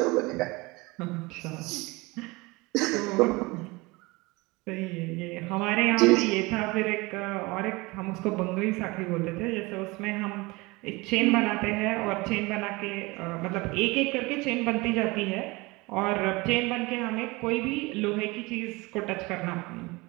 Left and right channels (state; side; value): quieter; left; 23.7 dB